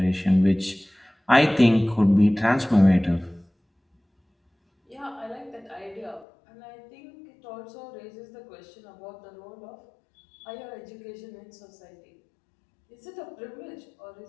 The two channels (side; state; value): right; drops out; at 6.2 s